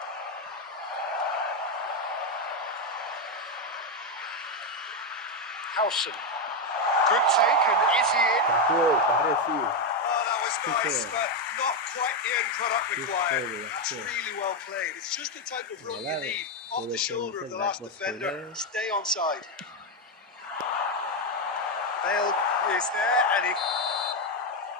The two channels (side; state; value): both; normal; correlation 0.06